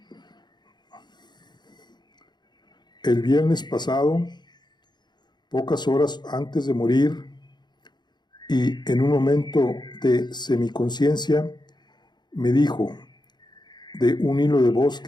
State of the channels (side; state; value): right; late; 0.21 ms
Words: El viernes pasado, pocas horas antes de morir, y en un momento de semiconciencia, me dijo de un hilo de voz